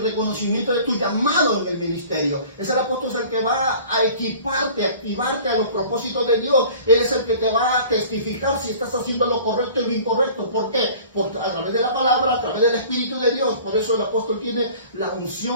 reconocimiento de tu llamado en el ministerio. Es el apóstol el que va a equiparte, activarte a los propósitos de Dios. Él es el que te va a testificar si estás haciendo lo correcto y lo incorrecto. ¿Por qué? A través de la palabra, a través del Espíritu de Dios. Por eso el apóstol tiene la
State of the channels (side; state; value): both; inverted; correlation -0.46